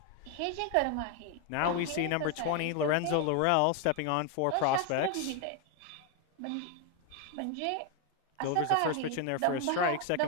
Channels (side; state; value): both; different; correlation 0.01